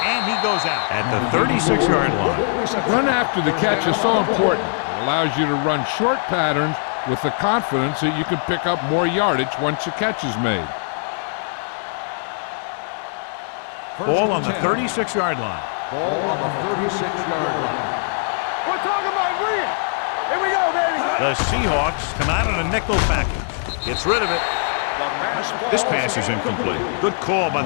and he goes out at the 36-yard line. Run after the catch is so important. It allows you to run short patterns with the confidence that you can pick up more yardage once the catch is made. Ball on the 36-yard line. Ball on the 36-yard line. We're talking about green. Here we go, baby. The Seahawks come out on a nickel package. Gets rid of it. This pass is incomplete. Good call by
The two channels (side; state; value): right; silent; digital silence